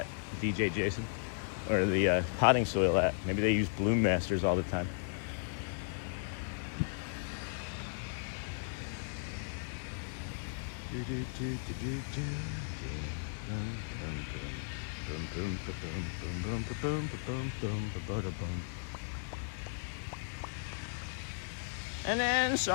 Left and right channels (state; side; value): silent; right; digital silence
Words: DJ Jason, or the potting soil at. Maybe they use Bloom Masters all the time. And then,